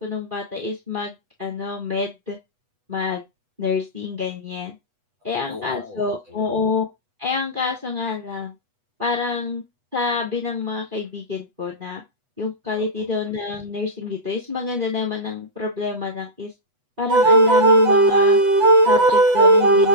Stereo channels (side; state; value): left; late; 8.1 ms